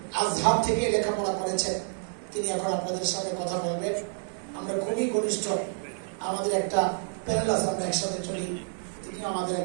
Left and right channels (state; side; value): silent; left; 59 dB below the other